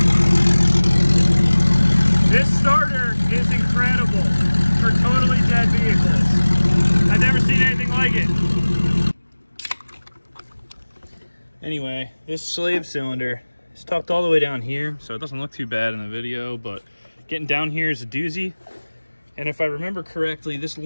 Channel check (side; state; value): both; inverted; correlation -1.00